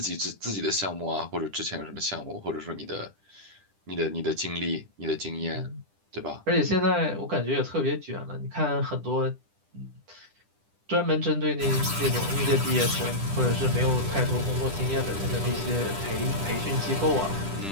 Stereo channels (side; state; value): left; late; 10 ms